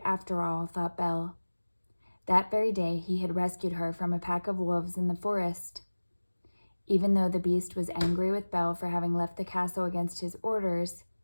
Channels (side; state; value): both; inverted; correlation -1.00